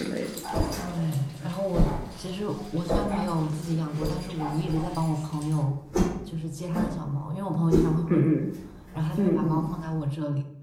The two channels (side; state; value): both; identical; correlation 1.00